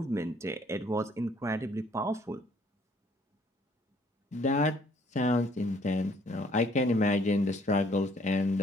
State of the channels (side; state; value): both; normal; correlation 0.62